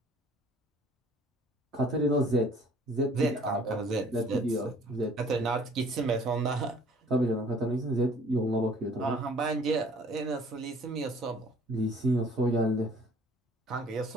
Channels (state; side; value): normal; both; correlation 0.55